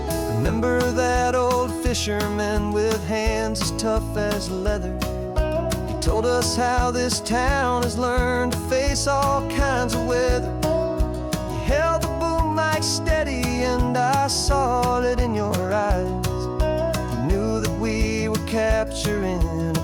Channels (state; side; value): identical; both; correlation 1.00